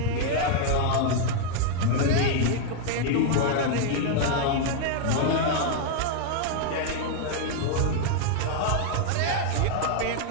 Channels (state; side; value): different; both; correlation 0.00